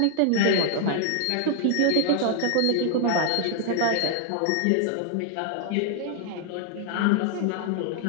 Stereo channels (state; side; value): different; both; correlation -0.01